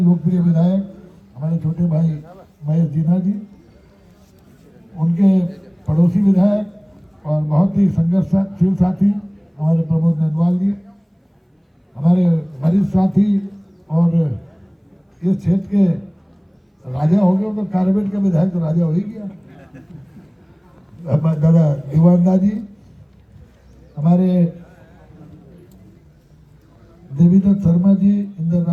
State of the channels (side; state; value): both; identical; correlation 1.00